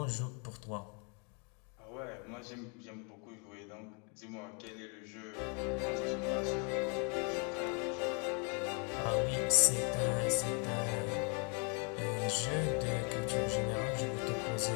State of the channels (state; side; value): quieter; right; 35.9 dB